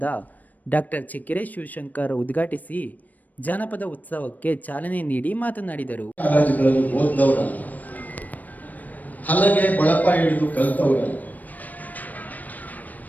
ಡಾಕ್ಟರ್ ಚೆಕ್ಕೆರೆ ಶಿವಶಂಕರ್ ಉದ್ಘಾಟಿಸಿ ಜಾನಪದ ಉತ್ಸವಕ್ಕೆ ಚಾಲನೆ ನೀಡಿ ಮಾತನಾಡಿದರು. ಹಲಗೆ ಬಳಪ ಹಿಡಿದು ಕಲ್ತವರಲ್ಲ,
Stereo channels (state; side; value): late; right; 0.081 ms